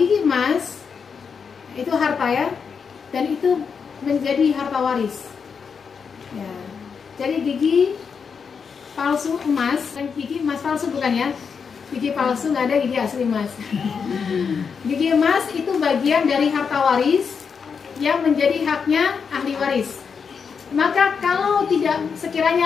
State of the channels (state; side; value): quieter; right; 6.1 dB